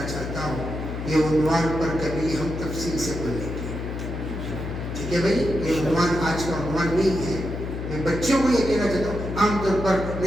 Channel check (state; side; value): noise; left; hum, 6 dB below the sound